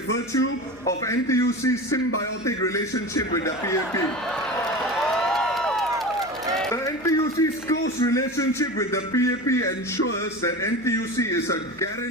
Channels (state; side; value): noise; left; hum, 24 dB below the sound